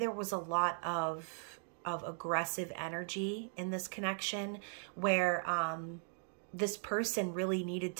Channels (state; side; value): silent; left; 52 dB below the other